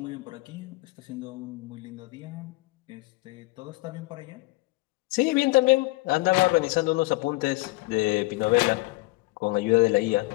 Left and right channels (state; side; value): quieter; right; 22.8 dB